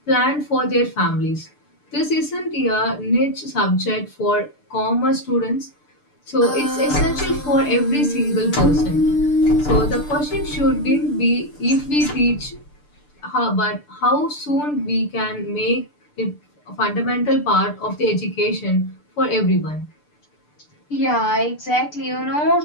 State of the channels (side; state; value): right; late; 6.8 ms